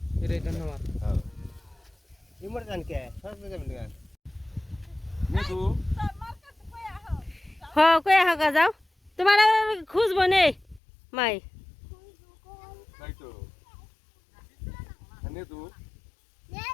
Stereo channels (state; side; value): drops out; right; at 10.8 s